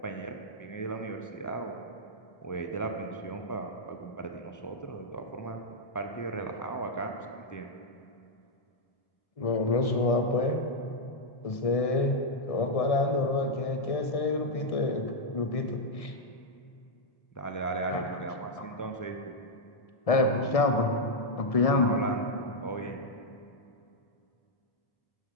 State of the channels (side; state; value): right; late; 1.7 ms